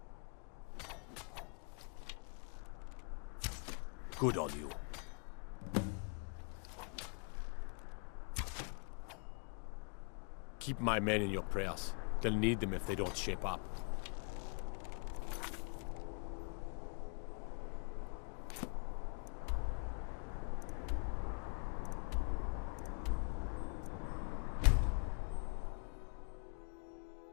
Good on you. Keep my men in your prayers. They'll need them if they don't shape up.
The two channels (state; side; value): quieter; right; 38.9 dB